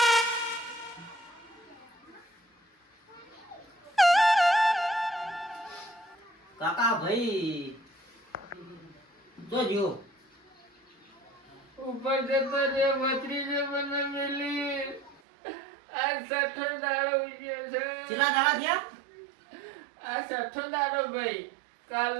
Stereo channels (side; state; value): left; drops out; at 15.2 s